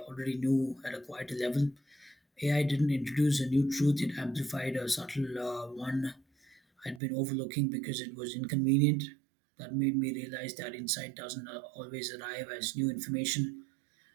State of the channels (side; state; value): left; drops out; at 7.0 s